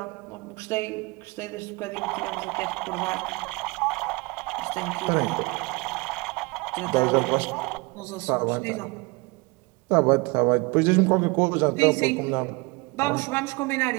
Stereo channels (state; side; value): quieter; left; 26.4 dB